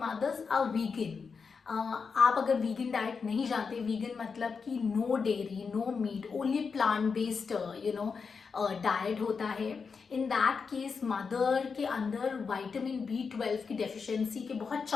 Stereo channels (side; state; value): right; quieter; 5.4 dB